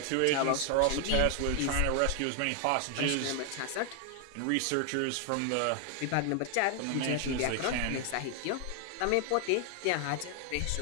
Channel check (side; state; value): both; different; correlation 0.00